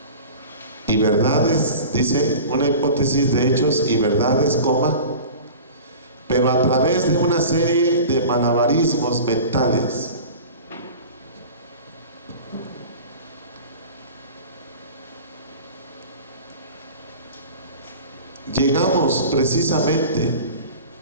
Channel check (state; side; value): inverted; both; correlation -0.38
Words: Y verdades, dice, una hipótesis de hechos y verdades, coma, pero a través de una serie de malabarismos mentales. Llegamos precisamente